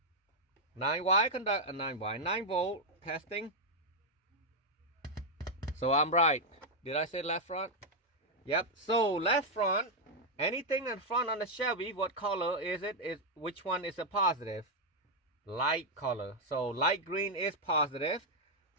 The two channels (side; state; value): both; normal; correlation -0.01